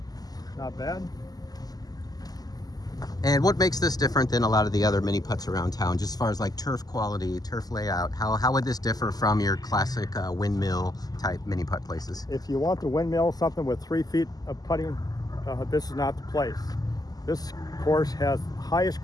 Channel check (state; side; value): late; right; 0.18 ms